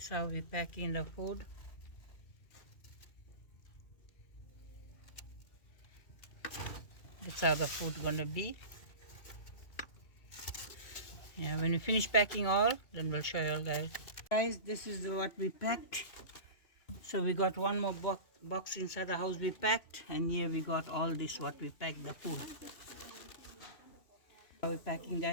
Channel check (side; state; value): right; late; 2.6 ms